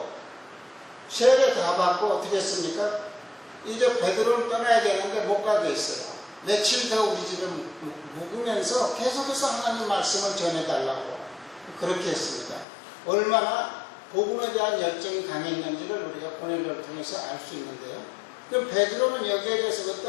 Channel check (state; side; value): drops out; right; at 12.7 s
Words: 세례 다 받고 어떻게 했습니까? 이제 베드로를 떠나야 되는데 못 가게 했어요. 며칠 더 우리 집에 묵으면서 계속해서 하나님 말씀을 전해달라고 그렇게 했습니다. 얼마나 복음에 대한 열정이 강했는지를 우리가 고넬료를 통해서 알 수 있는데요. 그럼 베드로는 여기에 대해서